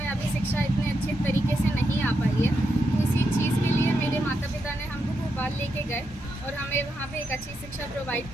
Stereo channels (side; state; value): both; normal; correlation 0.84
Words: अभी शिक्षा इतने अच्छे तरीके से नहीं आ पाई है। तो इसी चीज़ के लिए मेरे माता पिता ने हमको भोपाल लेके गए और हमें वहाँ पे एक अच्छी शिक्षा प्रोवाइड